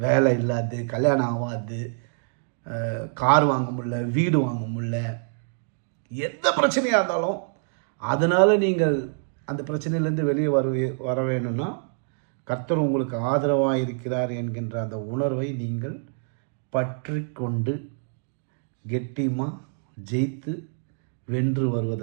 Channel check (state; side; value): silent; left; digital silence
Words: வேலை இல்லாது, கல்யாணம் ஆகாது, கார் வாங்க முடியல, வீடு வாங்க முடியல, எந்த பிரச்சனையாக இருந்தாலும் அதனால் நீங்கள் அந்த பிரச்சனையிலேருந்து வெளியே வர வேணும்னா கர்த்தர் உங்களுக்கு ஆதரவாக இருக்கிறார் என்கின்ற அந்த உணர்வை நீங்கள் பற்றி கொண்டு கெட்டியமாக ஜெயித்து வென்று